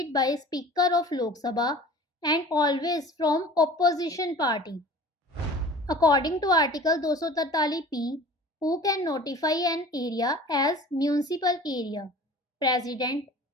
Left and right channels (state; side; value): normal; both; correlation 0.43